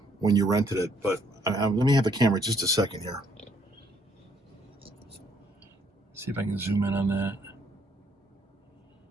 when you rented it, but let me have the camera just a second here. See if I can zoom in on that.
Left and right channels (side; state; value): both; normal; correlation 0.67